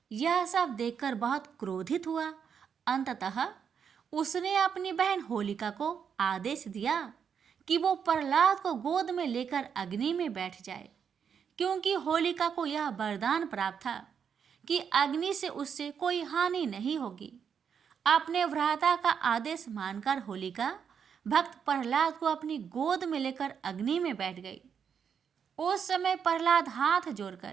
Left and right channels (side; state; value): left; quieter; 7.3 dB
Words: यह सब देखकर बहुत क्रोधित हुआ। अंततः उसने अपनी बहन होलिका को आदेश दिया कि वो प्रहलाद को गोद में लेकर अग्नि में बैठ जाए, क्योंकि होलिका को यह वरदान प्राप्त था कि अग्नि से उससे कोई हानि नहीं होगी। अपने भ्राता का आदेश मानकर होलिका भक्त प्रहलाद को अपनी गोद में लेकर अग्नि में बैठ गई। उस समय प्रहलाद हाथ